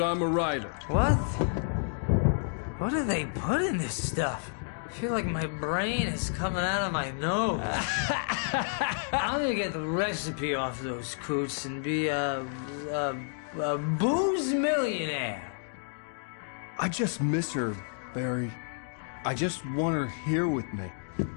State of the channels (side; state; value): right; silent; digital silence